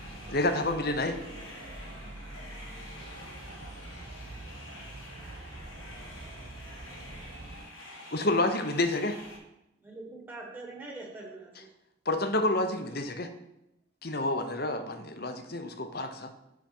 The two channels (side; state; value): both; normal; correlation 0.05